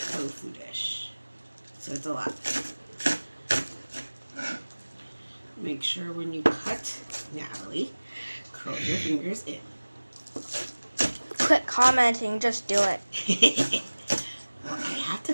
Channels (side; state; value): both; inverted; correlation -1.00